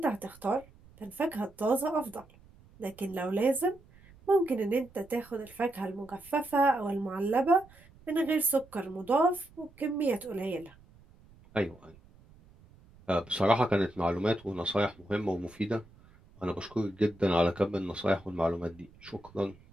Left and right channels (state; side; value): noise; right; rumble, 25 dB below the sound